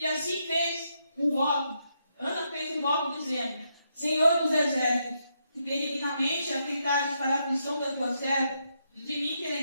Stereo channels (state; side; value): inverted; both; correlation -0.80